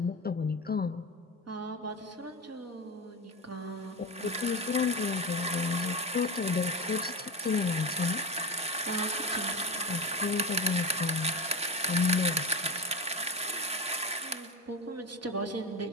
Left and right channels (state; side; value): normal; both; correlation 0.20